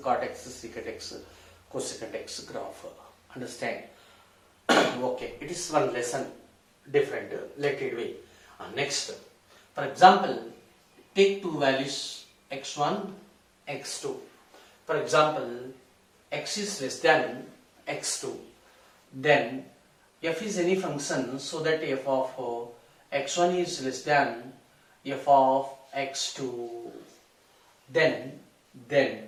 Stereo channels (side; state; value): both; identical; correlation 1.00